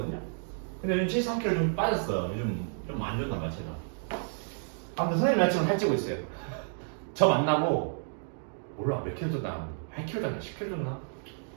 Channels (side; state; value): left; silent; digital silence